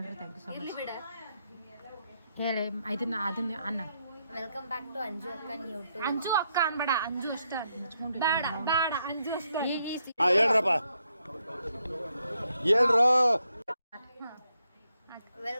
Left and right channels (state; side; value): inverted; both; correlation -0.79